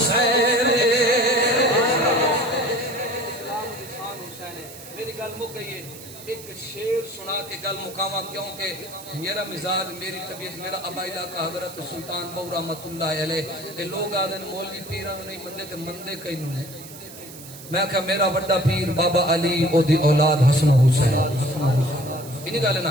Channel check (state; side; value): noise; right; hiss, 16 dB below the sound